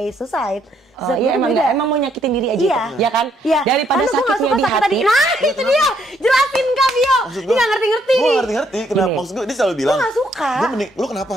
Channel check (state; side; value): normal; both; correlation 0.71